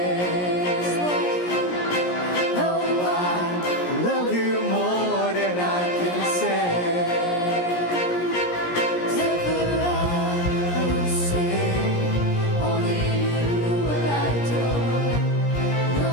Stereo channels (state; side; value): late; right; 17 ms